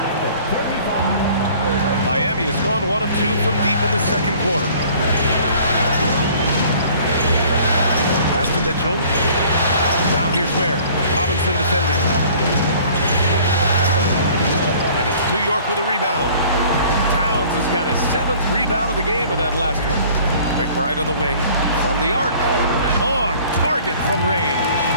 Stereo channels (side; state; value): both; inverted; correlation -0.52